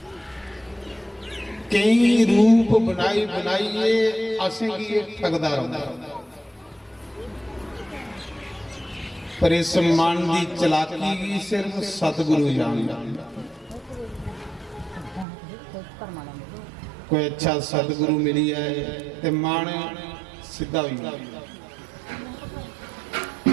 कई रूप बनाई बनाइए असें की ठगदा रहता। पर इस मन की चलाकी भी सिर्फ सतगुरु जानता। कोई अच्छा सतगुरु मिली है तो मन सीधा हुई,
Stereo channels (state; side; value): drops out; left; at 15.2 s